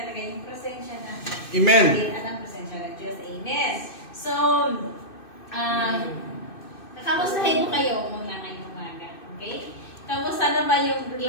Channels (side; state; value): right; late; 2.6 ms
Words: yung presensya na Amen. at ang presensya ng Diyos. Amen. So, kamustahin ko kayo muna ngayong umaga. Okay? Kamusta na ba yung